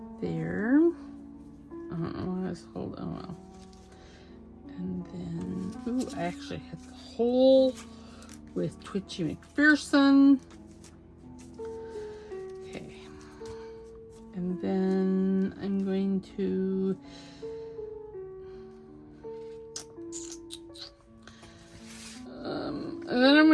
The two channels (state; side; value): identical; both; correlation 1.00